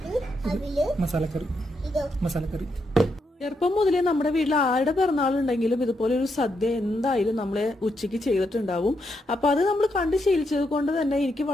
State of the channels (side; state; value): both; normal; correlation 0.81